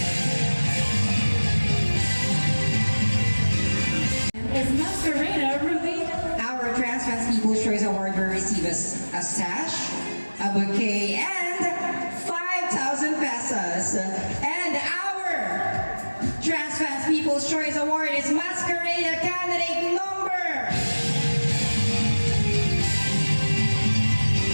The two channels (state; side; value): inverted; both; correlation -1.00